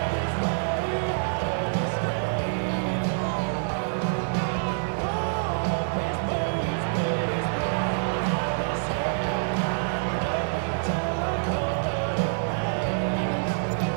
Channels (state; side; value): silent; left; digital silence